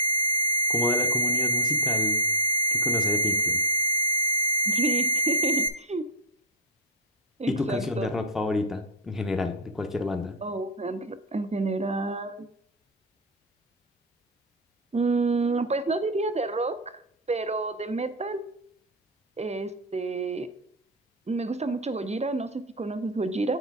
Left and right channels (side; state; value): both; normal; correlation -0.11